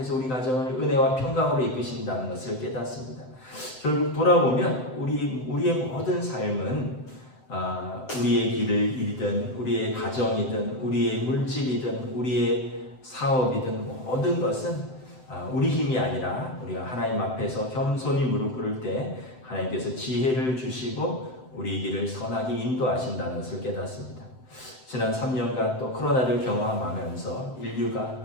우리 가정을 은혜와 평강으로 이끄신다는 것을 깨닫습니다. 결국 돌아보면 우리의 모든 삶은 우리의 길을 이든 우리의 가정이든 우리의 물질이든 우리의 사업이든 모든 것은 우리 힘이 아니라 우리가 하나님 앞에서 겸손히 무릎 꿇을 때 하나님께서 지혜를 주시고 우리 길을 선하게 인도하신다는 것을 깨닫습니다. 지난 3년간 또 코로나를 경험하면서 인류가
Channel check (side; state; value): right; late; 7.8 ms